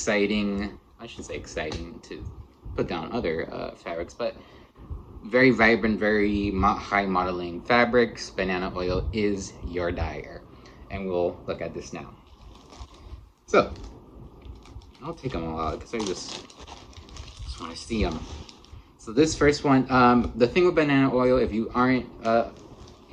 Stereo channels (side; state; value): both; identical; correlation 1.00